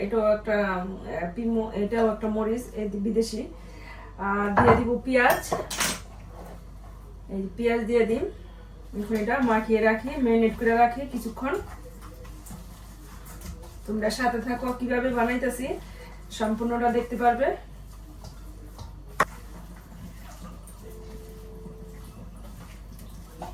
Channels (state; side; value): identical; both; correlation 1.00